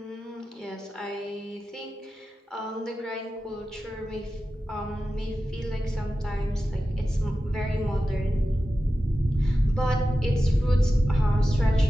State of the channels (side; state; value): both; normal; correlation 0.93